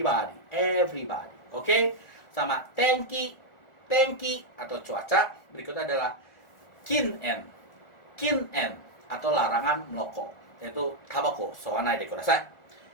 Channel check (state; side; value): late; right; 1.4 ms